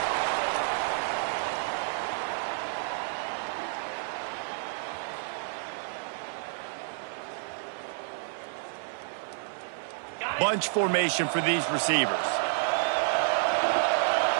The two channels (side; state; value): left; silent; 58 dB below the other